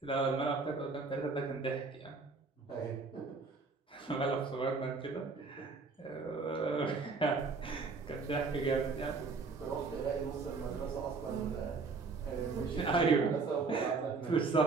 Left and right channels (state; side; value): quieter; left; 4.4 dB